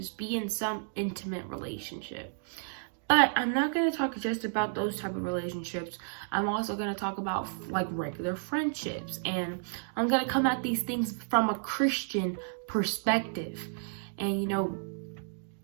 be in some intimate relationship. But I'm not going to talk just about those type of relationships. I'm also going to talk about like regular friendships, and I'm going to come at these things from a Christian perspective. And you know,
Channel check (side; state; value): left; silent; digital silence